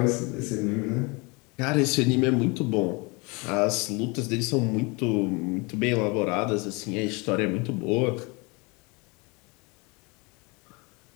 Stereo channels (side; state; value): right; quieter; 28.3 dB